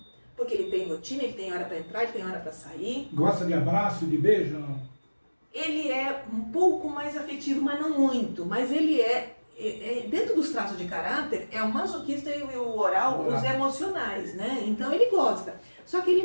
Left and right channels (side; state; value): both; inverted; correlation -1.00